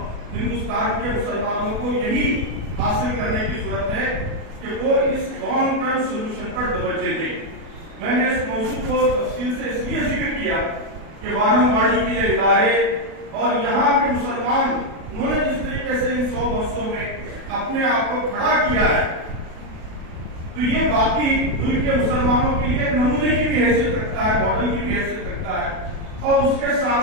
ہندوستان کے مسلمانوں کو یہی حاصل کرنے کی ضرورت ہے کہ وہ اس لانگ ٹرم سولوشن پر توجہ دیں۔ میں نے اس موضوع کو تفصیل سے اس لیے ذکر کیا کہ وانم واڑی کے یہ ادارے اور یہاں کے مسلمان، انہوں نے جس طریقے سے ان 100 برسوں میں اپنے آپ کو کھڑا کیا ہے، تو یہ باقی ملک کے مسلمانوں کے لیے نمونے کی بھی حیثیت رکھتا ہے، ماڈل کی بھی حیثیت رکھتا ہے، اور اس کے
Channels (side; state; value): left; late; 37 ms